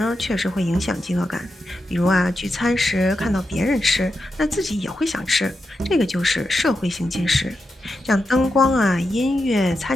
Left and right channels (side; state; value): both; normal; correlation 0.88